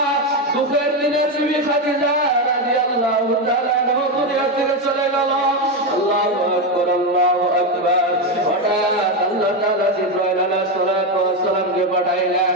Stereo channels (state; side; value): normal; both; correlation 0.10